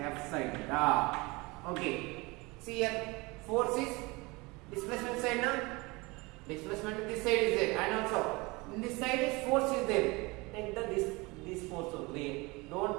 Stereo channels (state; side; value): quieter; left; 24.7 dB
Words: sine theta. Okay. See here. Force is displacement side now. Displacement in this side is there. And also in this side is force is there. Take the this force only. Don't